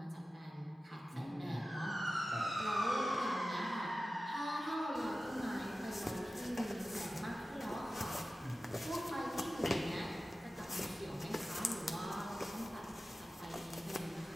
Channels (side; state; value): both; normal; correlation 0.95